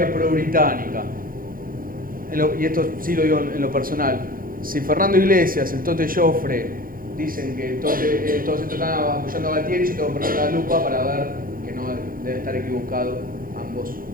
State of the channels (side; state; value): left; late; 0.41 ms